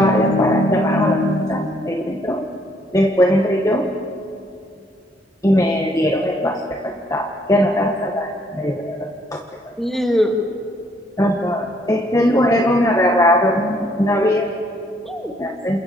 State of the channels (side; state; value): both; normal; correlation 0.67